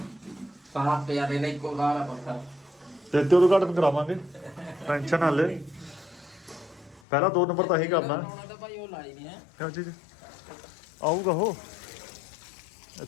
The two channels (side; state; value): right; drops out; at 7.0 s